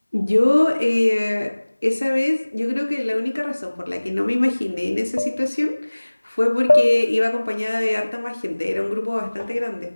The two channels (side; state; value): both; inverted; correlation -1.00